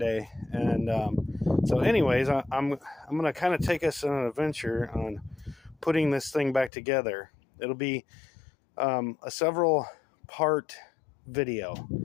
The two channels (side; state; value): right; drops out; at 6.7 s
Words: day. And so anyways, I'm going to kind of take us on an adventure on putting this thing back together. It'll be a several part video.